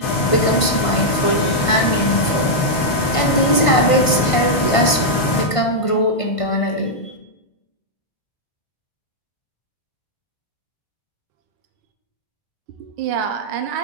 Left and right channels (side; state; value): right; late; 1.5 ms